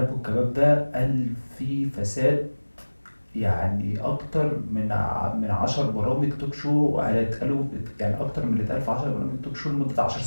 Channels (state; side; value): inverted; both; correlation -1.00